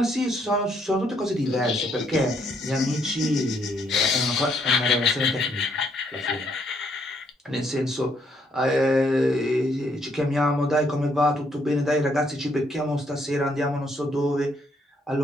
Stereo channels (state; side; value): normal; both; correlation 0.71